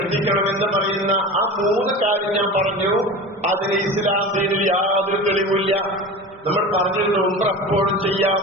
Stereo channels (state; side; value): normal; both; correlation 0.32